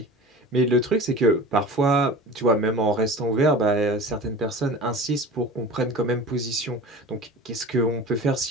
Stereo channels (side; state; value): both; normal; correlation 0.37